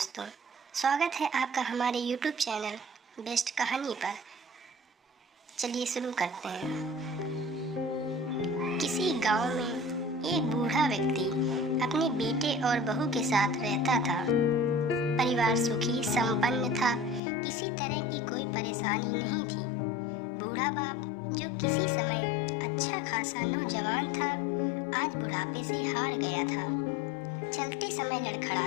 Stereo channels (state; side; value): drops out; right; at 17.2 s